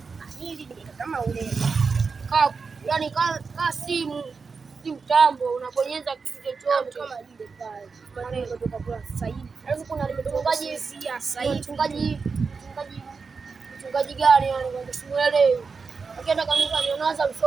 hili kama ule. Yaani ka simu mtambo unabonyeza kitu chochote kama ile pale. Maana kutoka kwa sasa hivi. Alafu kuna mchungaji sasa hivi. Mchungaji gani yani kwa simuelewi. Akienda kanisa anaanza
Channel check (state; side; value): quieter; left; 4.9 dB